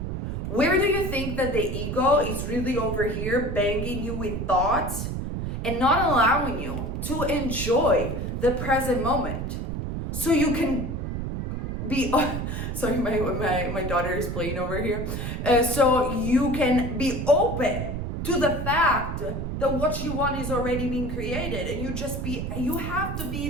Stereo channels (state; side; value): noise; right; rumble, 4 dB below the sound